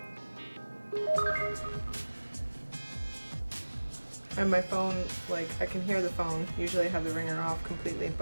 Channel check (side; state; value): both; inverted; correlation -1.00